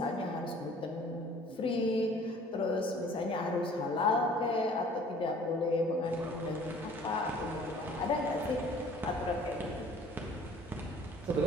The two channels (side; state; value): both; normal; correlation 0.51